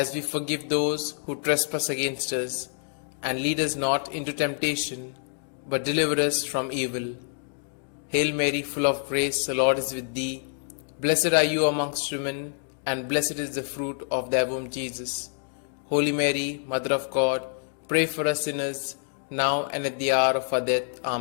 we forgive those who trespass against us. And lead us not into temptation, but deliver us from evil. Hail Mary, full of grace, the Lord is with thee. Blessed are you amongst women, and blessed is the fruit of thy womb, Jesus. Holy Mary, Mother of God, pray for us sinners, now and at the hour of our death.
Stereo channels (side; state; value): right; silent; 60 dB below the other